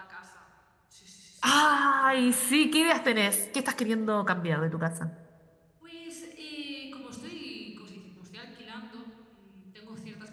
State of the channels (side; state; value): both; identical; correlation 1.00